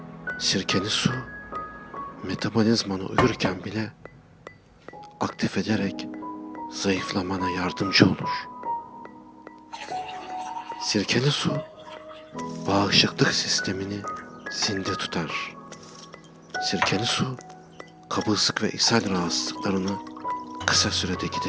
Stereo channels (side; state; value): both; identical; correlation 1.00